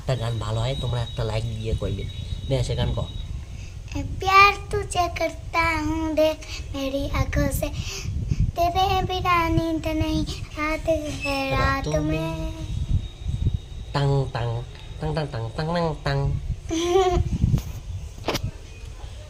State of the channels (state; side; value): identical; both; correlation 1.00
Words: গান ভালো হয় তোমরা একটা লাইক দিয়ে কইবে। নে আয়শা গান কও। प्यार तुझे करता हूँ देख मेरी आंखों से तेरे बिना नींद नहीं रात है रात में tongue tongue tongue tongue tongue tongue tongue tongue.